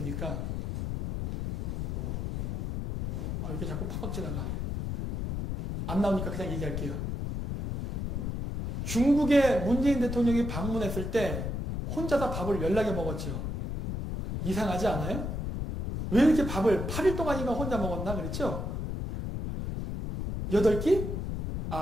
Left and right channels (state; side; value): noise; left; rumble, 3 dB below the sound